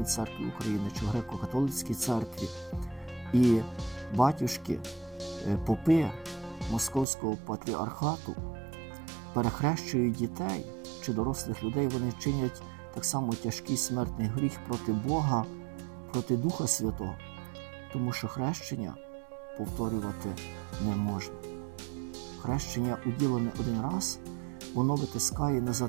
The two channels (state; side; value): drops out; left; at 7.1 s